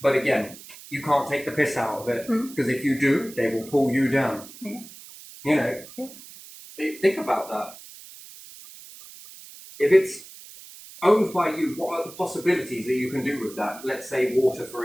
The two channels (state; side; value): noise; right; hiss, 17 dB below the sound